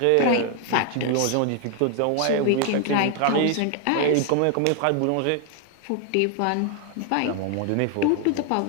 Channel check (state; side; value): different; both; correlation 0.00